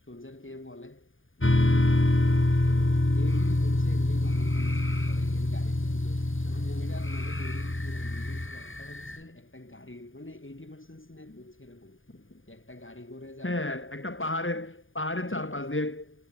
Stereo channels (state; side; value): late; right; 0.58 ms